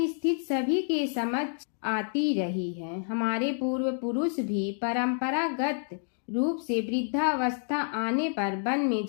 स्थिति सभी के समझ आती रही है। हमारे पूर्व पुरुष भी परंपरागत रूप से वृद्धावस्था आने पर वन में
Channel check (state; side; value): silent; right; digital silence